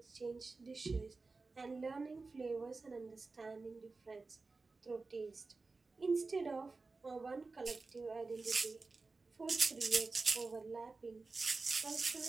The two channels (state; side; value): quieter; left; 3.9 dB